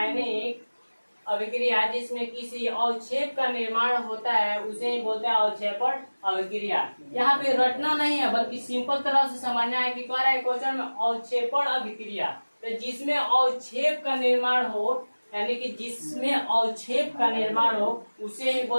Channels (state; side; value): inverted; both; correlation -1.00